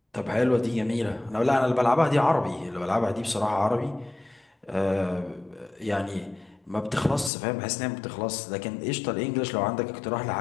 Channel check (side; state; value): right; drops out; at 7.3 s